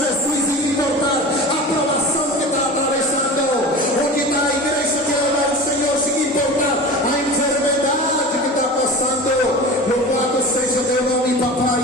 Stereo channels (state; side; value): normal; both; correlation 0.33